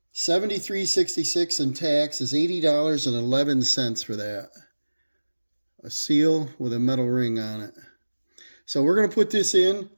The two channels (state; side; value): inverted; both; correlation -1.00